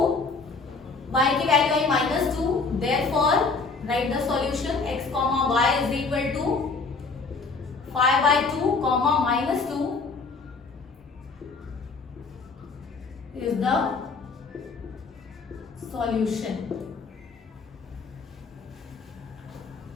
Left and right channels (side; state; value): right; quieter; 4.3 dB